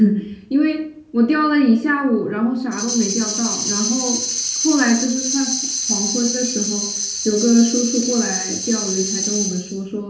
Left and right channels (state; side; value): identical; both; correlation 1.00